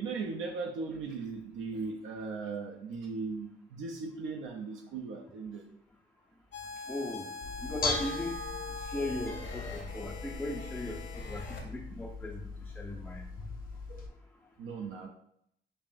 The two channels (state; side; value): normal; both; correlation 0.50